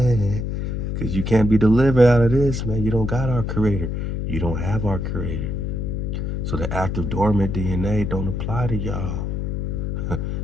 Because you can't be delivered out of this, man. You don't got our creator. You don't have our creator. So the active dormant DNA don't apply to y'all.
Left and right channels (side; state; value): left; noise; hum, 2 dB below the sound